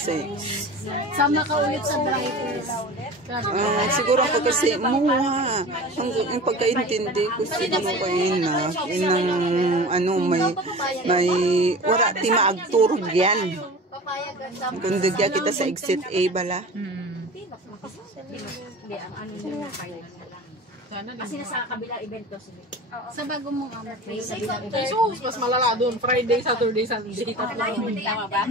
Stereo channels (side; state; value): both; normal; correlation 0.36